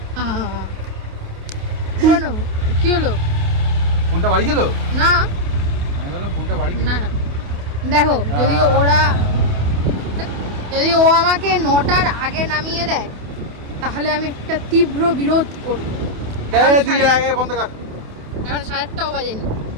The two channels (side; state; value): left; late; 28 ms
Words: শোনো, কি হলো? ফোনটা বাড়ি গেল না না না, দেখো যদি ও আমাকে 9টার আগে নামিয়ে দেয় তাহলে আমি একটা তীব্র বিরোধ করবো। এখন 7:30টাও বাজেনি,